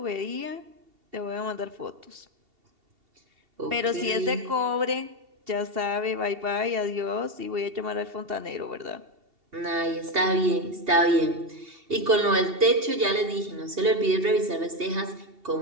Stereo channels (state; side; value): late; left; 2.7 ms